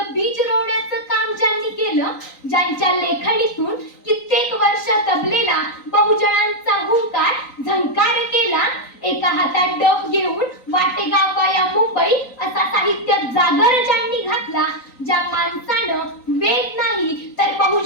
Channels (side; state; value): right; late; 3.9 ms